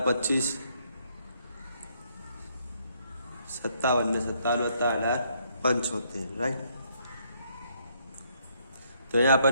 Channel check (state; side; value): inverted; both; correlation -0.70